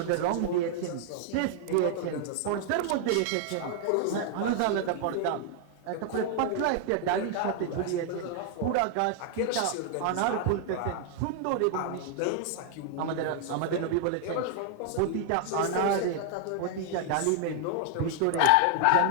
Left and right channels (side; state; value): both; different; correlation 0.00